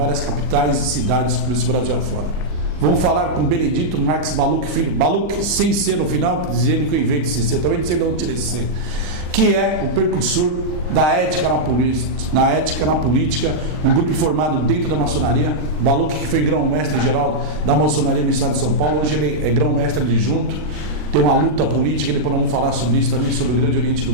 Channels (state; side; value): late; left; 39 ms